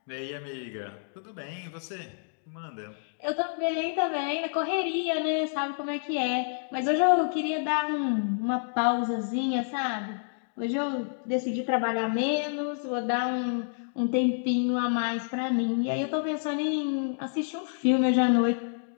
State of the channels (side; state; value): right; silent; digital silence